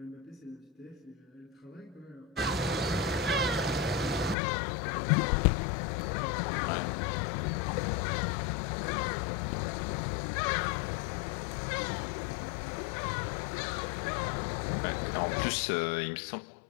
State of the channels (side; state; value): right; drops out; at 4.4 s